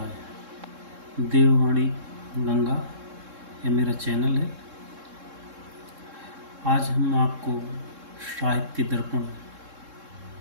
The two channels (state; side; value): late; left; 3.7 ms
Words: देववाणी गंगा ये मेरा चैनल है। आज हम आपको साहित्य दर्पण